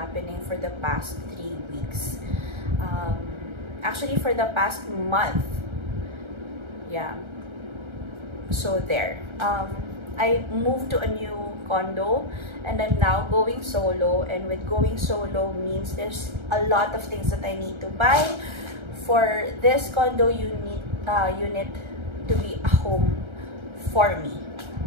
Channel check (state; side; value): late; left; 1.3 ms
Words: for the past 3 weeks. Actually for the past month. Yeah. So there. I moved to a new condo and I'm now going solo, and with going solo means there's a lot of things that I need to buy. For this condo unit to be a home for me.